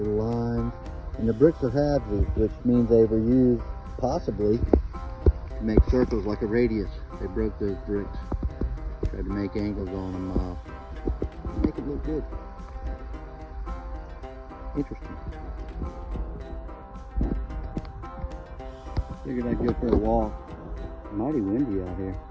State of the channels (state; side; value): identical; both; correlation 1.00